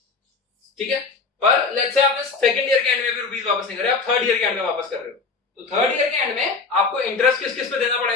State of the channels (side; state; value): right; quieter; 4.4 dB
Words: ठीक है। पर लेट्स से आपने सेकंड ईयर के एंड में भी रुपीस वापस नहीं करे, आप थर्ड ईयर के एंड में वापस कर रहे हो, तो थर्ड ईयर के एंड में आपको इंटरेस्ट किस किस पे देना